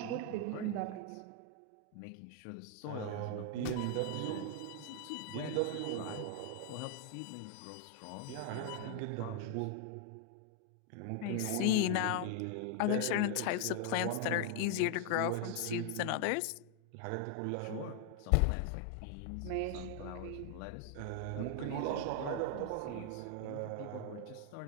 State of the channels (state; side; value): different; both; correlation 0.00